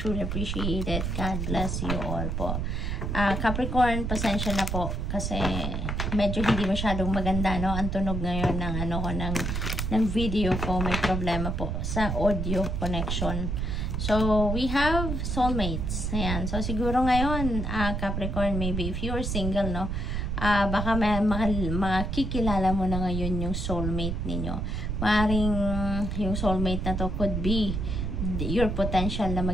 appreciate it. God bless you all po. Capricorn, pasensya na po kasi medyo hindi masyadong maganda, no? Ang tunog ngayon ng ng video ko, may problema po sa audio connection. So, we have soulmates. Ayan. So, siguro ngayon, Capricorn, maybe if you're single, no, baka makikilala mo na ngayon yung soulmate ninyo. Maaring yung soulmate na to could be your potential na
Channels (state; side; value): noise; right; rumble, 2 dB below the sound